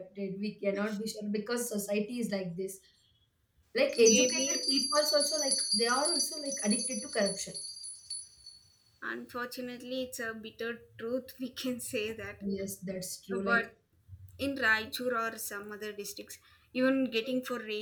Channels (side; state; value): both; identical; correlation 1.00